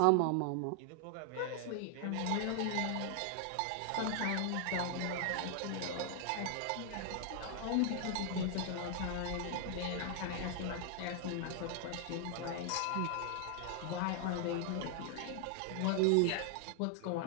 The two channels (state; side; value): different; both; correlation 0.00